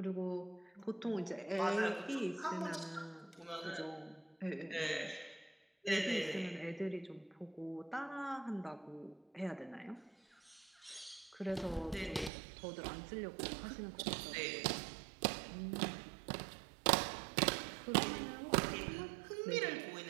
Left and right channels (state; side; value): drops out; left; at 12.3 s